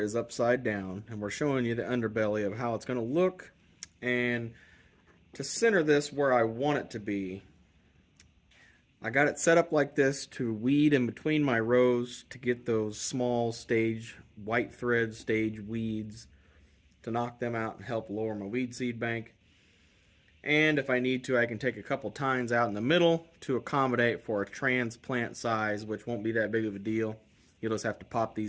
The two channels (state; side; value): identical; both; correlation 1.00